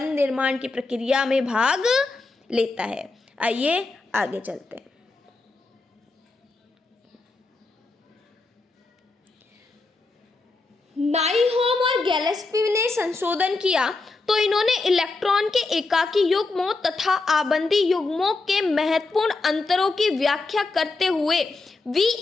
निर्माण की प्रक्रिया में भाग लेता है। आइए आगे चलते हैं। नाइहोम और गैलेस्पी ने संशोधन किया तो इन्होंने इलेक्ट्रॉन के एकाकी युग्मों तथा आबंधी युग्मों के महत्वपूर्ण अंतरों की व्याख्या करते हुए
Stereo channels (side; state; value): right; quieter; 3.5 dB